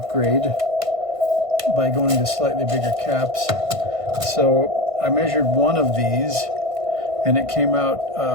by going to slightly bigger caps. So I measured one of these, and it came out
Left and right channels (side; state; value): left; late; 1.5 ms